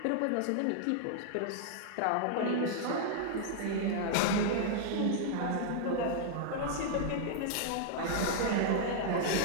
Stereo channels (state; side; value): different; both; correlation -0.01